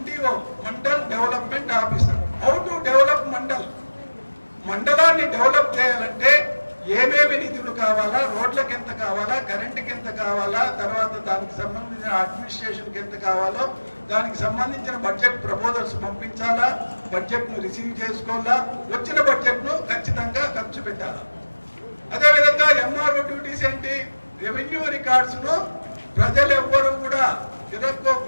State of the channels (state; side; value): inverted; both; correlation -1.00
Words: mandal development officer. How to develop మండలాన్ని develop చేయాలంటే ఏమేమి నిధులు కావాలా, రోడ్లకు ఎంత కావాలా, కరెంటుకి ఎంత కావాలా, తర్వాత దానికి సంబంధించిన అడ్మినిస్ట్రేషన్కి ఎంత కావాలో, దానికి సంబంధించిన బడ్జెట్ ప్రపోజల్స్ పంపించాలా, బడ్జెట్ను రిసీవ్ చేసుకోవాలా, వచ్చిన బడ్జెట్ను ఖచ్చితంగా ఖర్చు పెట్టాలా. అదేవిధంగా MRO డ్యూటీస్ ఏంటి? రెవెన్యూ రికార్డ్స్ను ప్రజలు ఎవ్వరూ కూడా